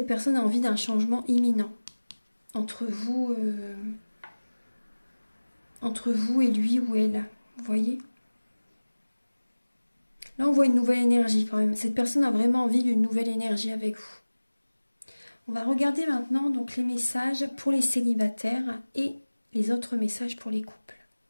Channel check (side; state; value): both; inverted; correlation -1.00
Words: personne a envie d'un changement imminent entre vous et lui ou elle. Vous voyez? Là, on voit une nouvelle énergie quand même. Cette personne a vraiment envie d'une nouvelle énergie avec vous. On va regarder maintenant donc les messages pour les célibataires et les autres messages pour les couples.